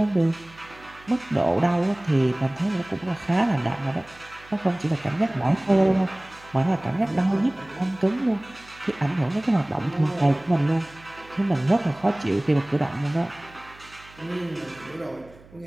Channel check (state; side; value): noise; right; hum, 24 dB below the sound